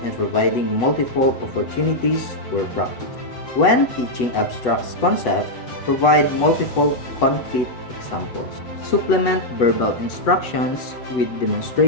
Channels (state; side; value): late; right; 8.1 ms